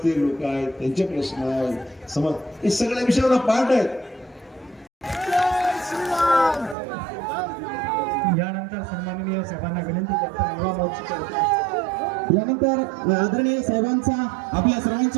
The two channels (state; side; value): drops out; left; at 6.8 s